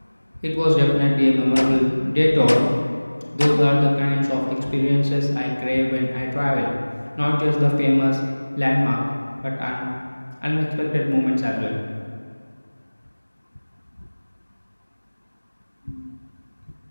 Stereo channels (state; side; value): inverted; both; correlation -1.00